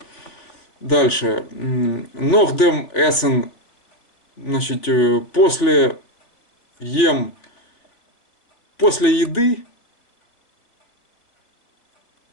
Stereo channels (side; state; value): right; late; 3.5 ms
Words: Дальше. Нохдем эссен. Значит, после еды